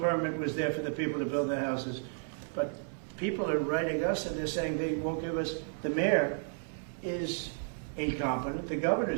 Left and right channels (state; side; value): silent; left; 56 dB below the other